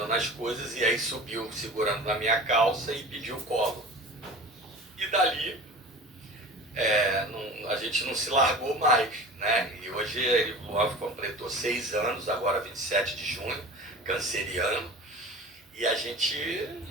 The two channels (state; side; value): normal; both; correlation 0.38